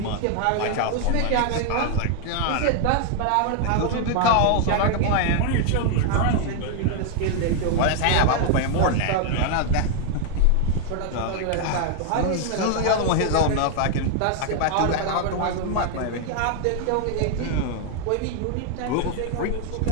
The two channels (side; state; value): both; different; correlation 0.00